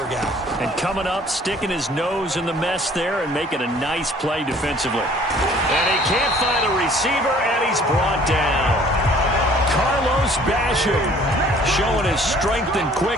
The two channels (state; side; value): normal; both; correlation 0.55